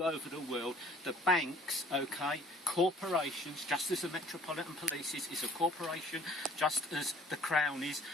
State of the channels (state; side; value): normal; both; correlation 0.54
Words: over over the world, the banks, okay, corporations, just as the Metropolitan Police is a corporation, just as the Crown is,